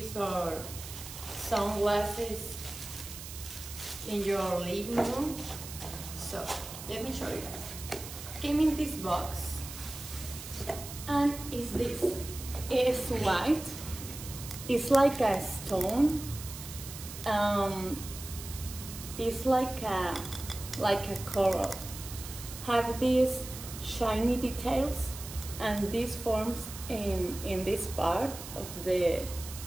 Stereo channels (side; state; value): right; noise; hiss, 11 dB below the sound